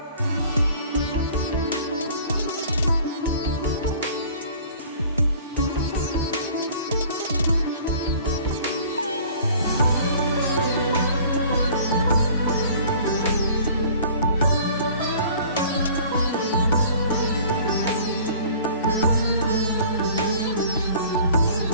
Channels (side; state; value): both; inverted; correlation -0.49